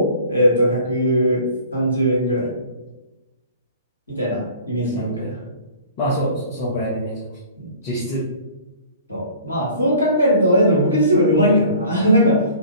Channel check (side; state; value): both; inverted; correlation -0.47